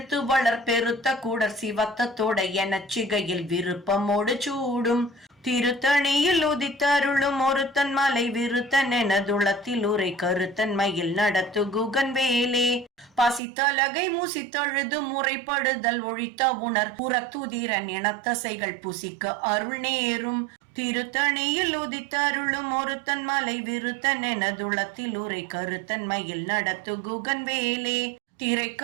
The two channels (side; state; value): left; drops out; at 13.4 s